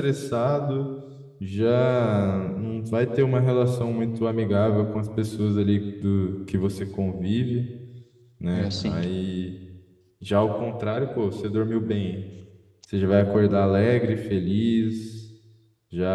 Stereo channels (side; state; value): both; identical; correlation 1.00